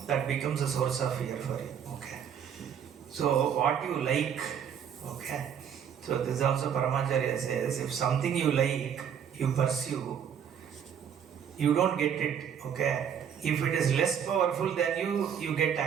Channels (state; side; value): quieter; left; 8.2 dB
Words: that becomes a source of fear for you. Okay. So what you like, okay. So this also Paramacharya says, if something you like, you pursue, you don't get it. Okay. If it is less powerful than you get